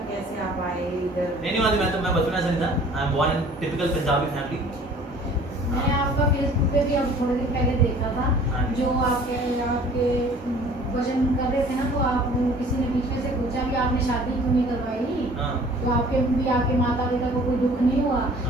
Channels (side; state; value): both; normal; correlation 0.51